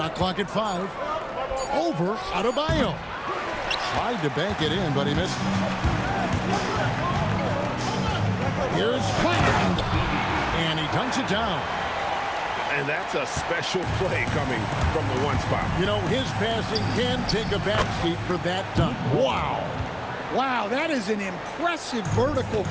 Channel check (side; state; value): both; identical; correlation 1.00